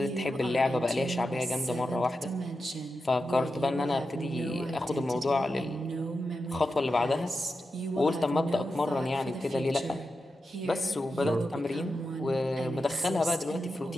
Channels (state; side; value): normal; both; correlation 0.89